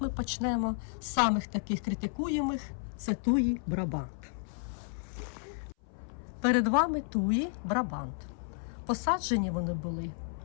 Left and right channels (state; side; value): silent; right; 56 dB below the other